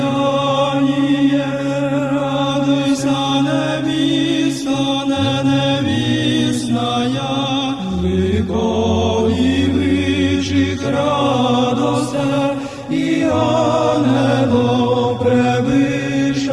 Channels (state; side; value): identical; both; correlation 1.00